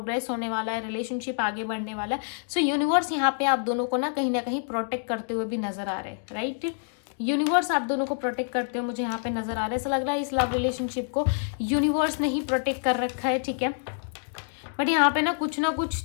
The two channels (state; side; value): silent; right; digital silence